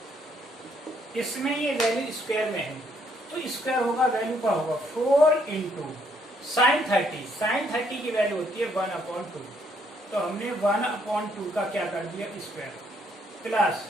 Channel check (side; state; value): both; normal; correlation 0.70